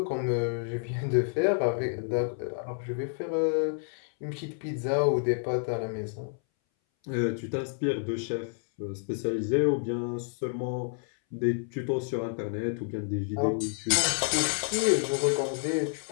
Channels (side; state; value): right; silent; 58 dB below the other